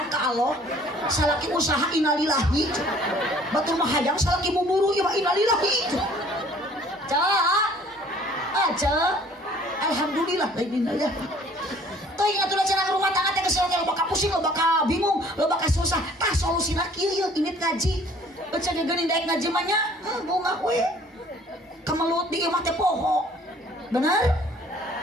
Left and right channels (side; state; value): both; normal; correlation 0.55